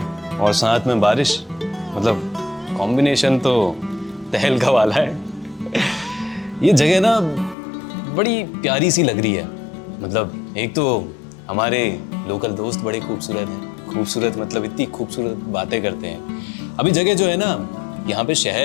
और साथ में बारिश, मतलब कॉम्बिनेशन तो तहलका वाला है। ये जगह ना बड़ी प्यारी सी लग रही है। मतलब एक तो हमारे लोकल दोस्त बड़े खूबसूरत हैं, खूबसूरत मतलब इतनी खूबसूरत बातें करते हैं। अभी जगह जो है ना, यहाँ पे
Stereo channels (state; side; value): drops out; right; at 7.6 s